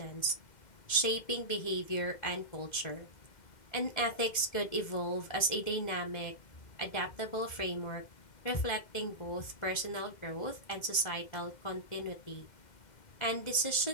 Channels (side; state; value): right; late; 2.1 ms